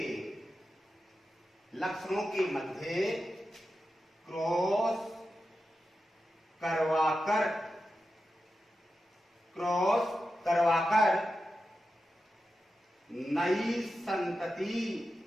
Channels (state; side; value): normal; both; correlation 0.91